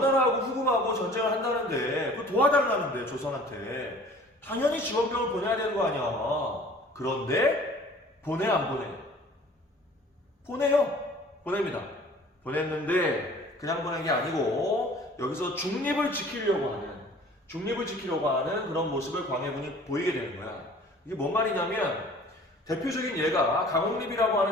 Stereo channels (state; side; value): normal; both; correlation 0.49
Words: 후금하고 전쟁을 한다는데 그거 도와달라는데 조선한테 당연히 지원병을 보내야 되는 거 아니야. 그런데 보내 안 보내? 보내요. 보냅니다. 보냈는데 그냥 보낸 게 아니고 여기서 중립을 지키려고 하는 그런 모습을 광해군이 보이게 되는 거야. 이게 뭔 말이냐면 대표적인 예가 강홍립이라고